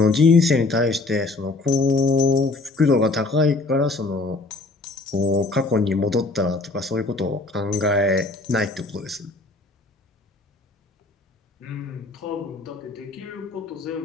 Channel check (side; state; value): right; quieter; 3.3 dB